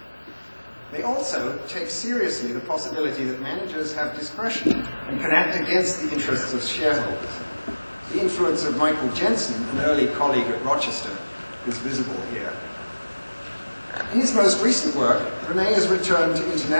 They also take seriously the possibility that managers have discretion and can act against the interests of shareholders. The influence of Michael Jensen, an early colleague at Rochester, is visible here. In his most recent work, René has returned to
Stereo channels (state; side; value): inverted; both; correlation -1.00